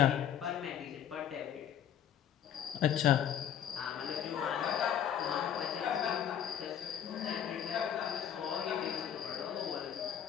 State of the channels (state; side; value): quieter; right; 9.4 dB